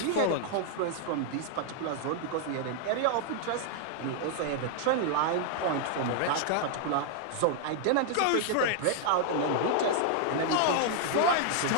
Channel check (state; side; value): different; both; correlation 0.00